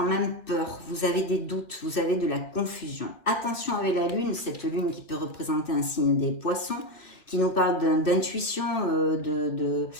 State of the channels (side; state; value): right; late; 2.6 ms